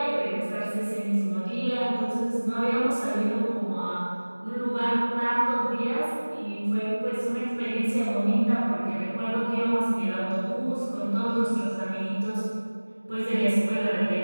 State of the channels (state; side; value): inverted; both; correlation -1.00